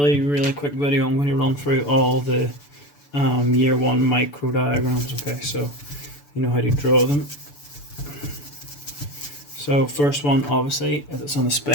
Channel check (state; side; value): late; right; 6.9 ms